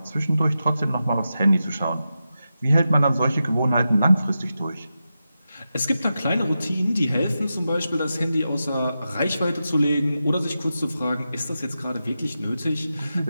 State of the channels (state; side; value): inverted; both; correlation -0.90